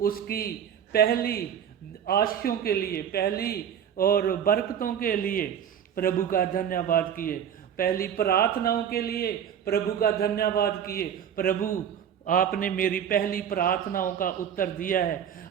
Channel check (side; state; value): left; quieter; 8.8 dB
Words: उसकी पहली आशीषों के लिए, पहली और बरकतों के लिए प्रभु का धन्यवाद किए, पहली प्रार्थनाओं के लिए प्रभु का धन्यवाद किए। प्रभु आपने मेरी पहली प्रार्थनाओं का उत्तर दिया है,